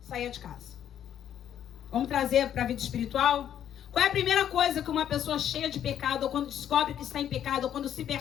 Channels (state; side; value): quieter; right; 10.1 dB